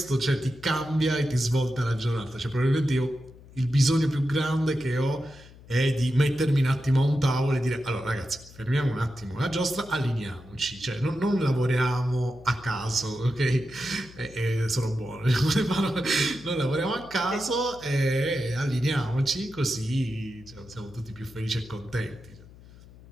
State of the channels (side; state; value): left; noise; hum, 21 dB below the sound